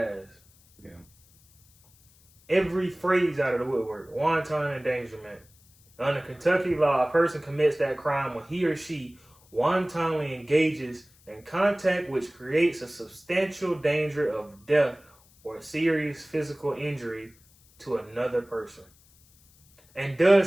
ass? Yeah. Every phrase out of the woodwork. Wanton endangerment. Under Kentucky law, a person commits that crime when he or she wantonly engages in contact which creates a substantial danger of death or serious physical injury to another person, and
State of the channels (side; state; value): left; noise; hiss, 29 dB below the sound